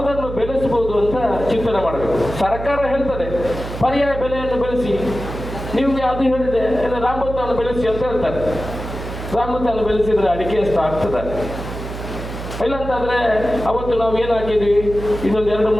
ಬೆಳೆಸಬಹುದು ಅಂತ ಚಿಂತನೆ ಮಾಡಬೇಕು. ಸರ್ಕಾರ ಹೇಳ್ತದೆ ಪರ್ಯಾಯ ಬೆಲೆಯನ್ನು ಬೆಳೆಸಿ, ನಿಮ್ಗೆ ಅದು ಹೇಳಿದೆ ರಾಮಭತ್ತವನ್ನು ಬೆಳೆಸಿ ಅಂತ ಹೇಳ್ತಾರೆ. ರಾಮಭತ್ತವನ್ನು ಬೆಳೆಸಿದ್ರೆ ಅಡಿಕೆ ಎಷ್ಟು ಆಗ್ತದೆ? ಇಲ್ಲಂತಾದ್ರೆ ಅವತ್ತು ನಾವು ಏನು ಹಾಕಿದ್ವಿ, ಇನ್ನೊಂದು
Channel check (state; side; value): noise; right; hum, 9 dB below the sound